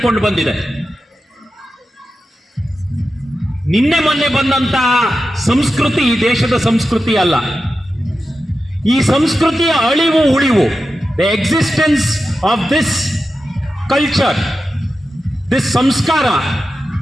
ಬಂದಿದೆ. ನಿನ್ನೆ ಮೊನ್ನೆ ಬಂದಂತಹ ಸಂಸ್ಕೃತಿ ಈ ದೇಶದ ಸಂಸ್ಕೃತಿ ಅಲ್ಲ. ಈ ಸಂಸ್ಕೃತಿಯ ಅಳಿವು ಉಳಿವು, the existence of this culture, this ಸಂಸ್ಕಾರ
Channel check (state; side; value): normal; both; correlation 0.91